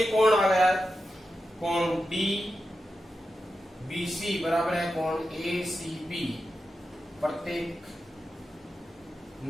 कोण आ गया, कोण डी बीसी बराबर है कोण ए सी बी प्रत्येक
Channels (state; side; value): normal; both; correlation 0.90